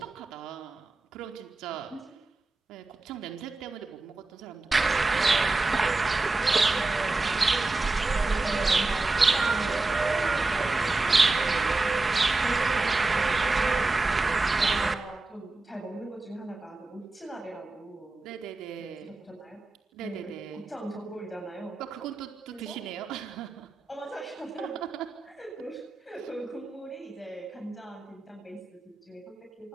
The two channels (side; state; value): left; quieter; 3.3 dB